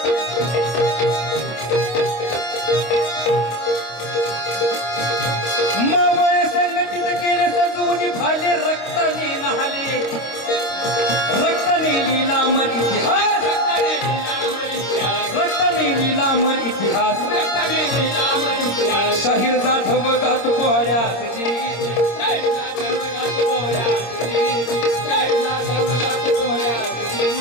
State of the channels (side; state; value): right; late; 26 ms